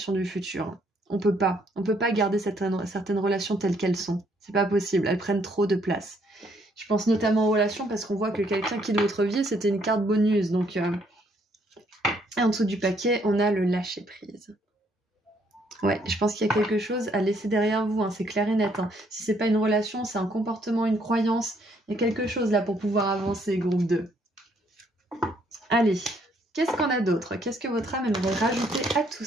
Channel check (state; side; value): normal; both; correlation 0.68